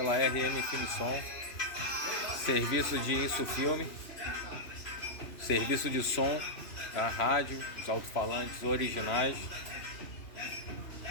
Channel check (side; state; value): right; late; 3.0 ms